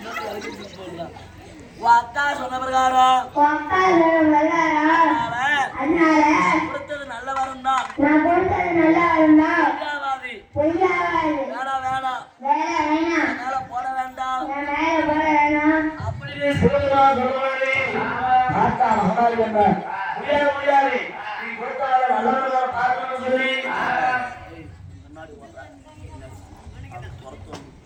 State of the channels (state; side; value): identical; both; correlation 1.00